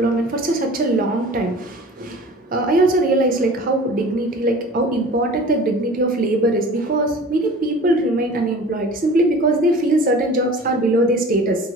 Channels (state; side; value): normal; both; correlation 0.42